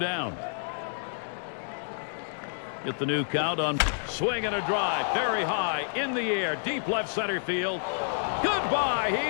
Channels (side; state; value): right; silent; 59 dB below the other